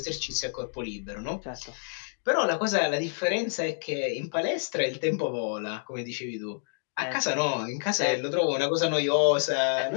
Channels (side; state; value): right; silent; digital silence